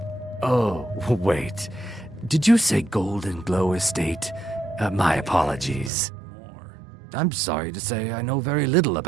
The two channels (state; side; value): drops out; left; at 5.9 s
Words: Oh, wait. Did you say Golden Glow Estate? My apologies. I'm sorry to say I know very little